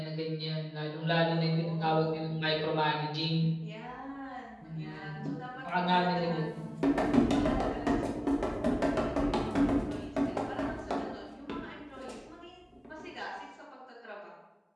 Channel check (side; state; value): both; identical; correlation 1.00